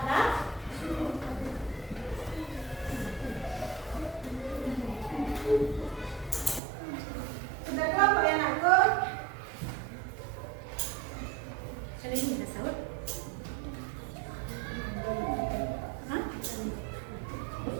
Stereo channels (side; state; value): left; drops out; at 6.6 s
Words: Sudah kelompok ya anakku? Kali ini ada sahut? Hah?